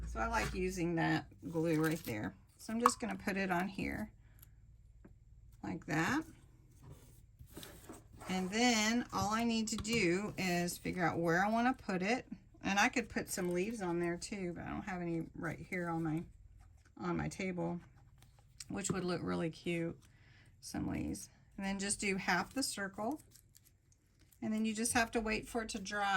So I like using that glue right there. So I'm just going to put it on here like that. And then all I need to do is figure out where I want to put it. And I could put some leaves on there too, but I don't have any right here on my table, which would look really cute, some leaves. And then just do half the circle. And then you just have to wait for it to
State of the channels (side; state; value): both; identical; correlation 1.00